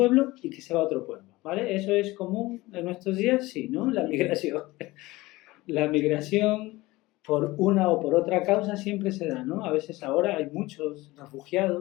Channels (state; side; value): quieter; right; 20.0 dB